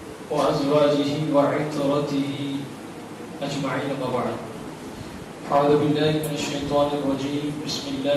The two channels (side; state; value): both; identical; correlation 1.00